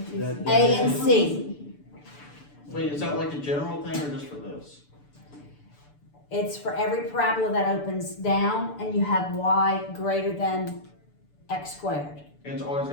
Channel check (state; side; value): late; right; 6.8 ms